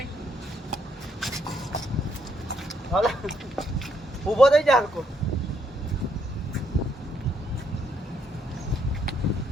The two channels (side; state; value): both; normal; correlation 0.73